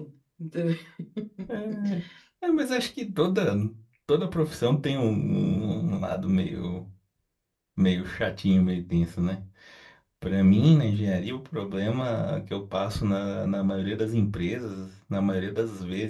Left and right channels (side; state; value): both; identical; correlation 1.00